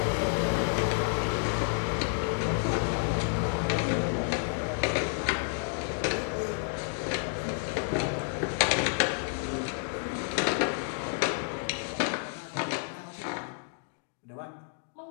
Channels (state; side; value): silent; right; 58 dB below the other